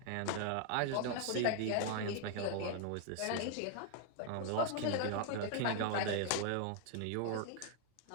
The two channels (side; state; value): both; different; correlation 0.00